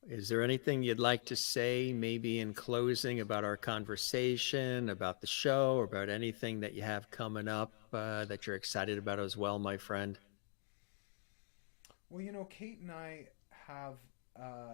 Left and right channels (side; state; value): right; silent; digital silence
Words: Is there anything you'd like to say, maybe in closing, about our conversation, about the show, or about anything that you have coming up that you're excited about as well, my friend? Well, you know, Kate and I have